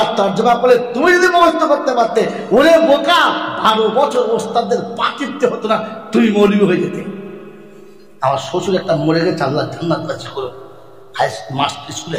তর্জমা করে তুমি যদি মুখস্থ করতে পারতে ওরে বোকা 12 বছর ওস্তাদদের পা টিপতে হতো না তুমি মৌলবি হয়ে যেতে আমার শ্বশুর একটা মরে গেছে আল্লাহ জান্নাত বাঁচিয়ে করো স্কুলে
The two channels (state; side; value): identical; both; correlation 1.00